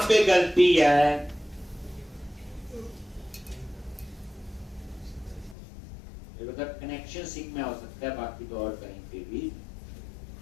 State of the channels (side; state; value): right; drops out; at 5.6 s